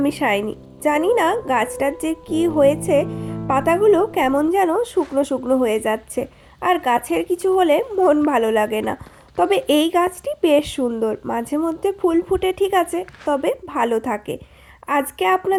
শাইনি। জানি না গাছটার যে কী হয়েছে, পাতাগুলো কেমন যেন শুকনো শুকনো হয়ে যাচ্ছে, আর গাছের কিছু হলে মন ভালো লাগে না। তবে এই গাছটি বেশ সুন্দর, মাঝে মধ্যে ফুল ফুটে ঠিক আছে, তবে ভালো থাকে। আজকে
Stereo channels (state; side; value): identical; both; correlation 1.00